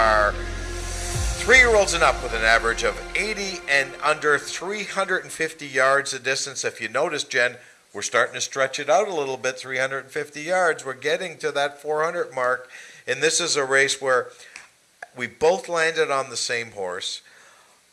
3-year-olds and up with an average of 80 and under 350 yards a distance. If you notice, Jen, we're starting to stretch it out a little bit, 350 yards. We're getting to that 400 mark. And this is a race where we both landed on the same horse.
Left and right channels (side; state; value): both; identical; correlation 1.00